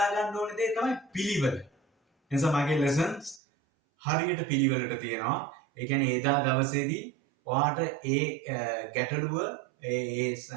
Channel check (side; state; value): left; drops out; at 3.4 s